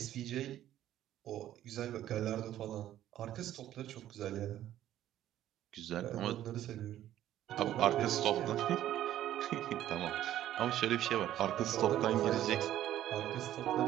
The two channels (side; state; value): left; quieter; 12.4 dB